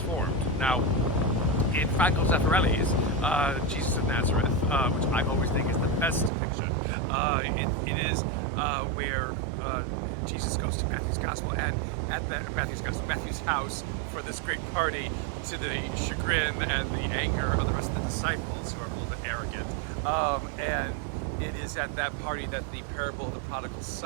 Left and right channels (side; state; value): left; drops out; at 6.3 s